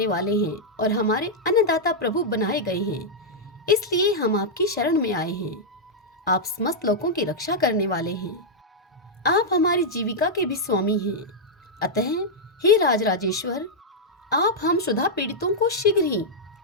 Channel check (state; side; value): normal; both; correlation -0.05